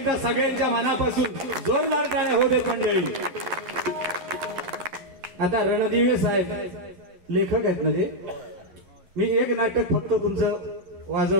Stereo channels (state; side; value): late; left; 11 ms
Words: सगळ्यांच्या मनापासून जोरदार टाळ्या होते मंडळी. आता रणदिवे साहेब लेखक आहेत ना ते. मी एक नाटक फक्त तुमचं